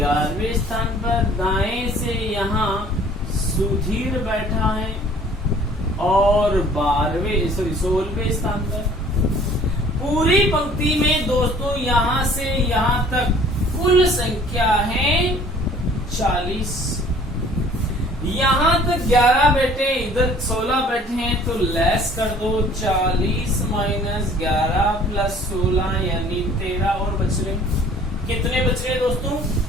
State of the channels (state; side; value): normal; both; correlation 0.53